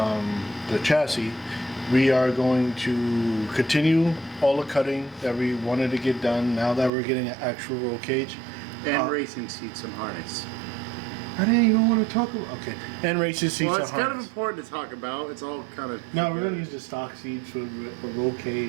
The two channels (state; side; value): drops out; left; at 6.9 s